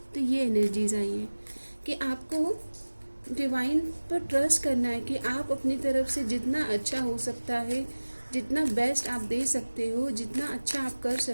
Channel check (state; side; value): inverted; both; correlation -1.00